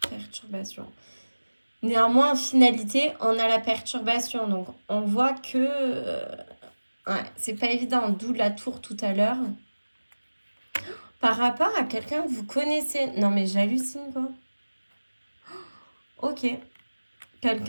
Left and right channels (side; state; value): both; inverted; correlation -1.00